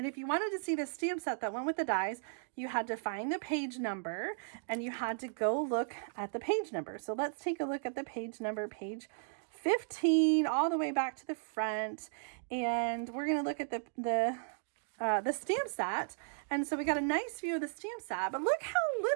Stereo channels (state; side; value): silent; left; digital silence